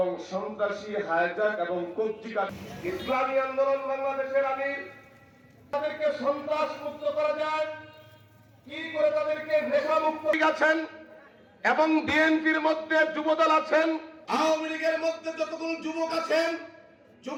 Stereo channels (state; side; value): identical; both; correlation 1.00